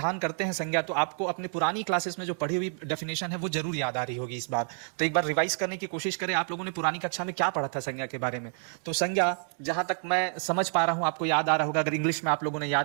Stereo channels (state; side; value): silent; left; 59 dB below the other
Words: करते हैं संज्ञा, तो आपको अपने पुरानी क्लासेस में जो पढ़ी हुई डेफिनेशन है वो जरूर याद आ रही होगी इस बार। तो एक बार रिवाइज करने की कोशिश करें, आप लोगों ने पुरानी कक्षा में क्या पढ़ा था संज्ञा के बारे में। तो संज्ञा, जहां तक मैं समझ पा रहा हूं, आपको याद आ रहा होगा, अगर इंग्लिश में आप लोगों ने